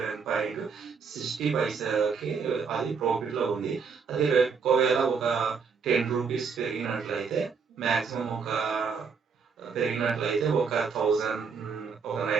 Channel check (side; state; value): left; quieter; 5.7 dB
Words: అది ప్రాఫిట్ లో ఉంది. అది ఒకవేళ ఒక 10 రూపీస్ పెరిగినట్లయితే మాక్సిమం ఒక 1000 ఒక